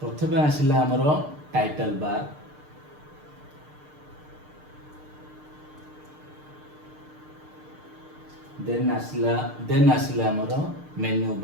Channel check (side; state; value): left; late; 6.6 ms